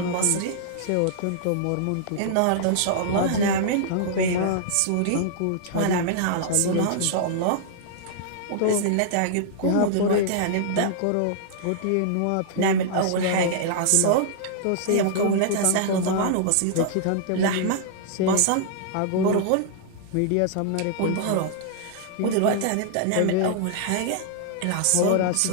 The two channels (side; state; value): both; different; correlation -0.01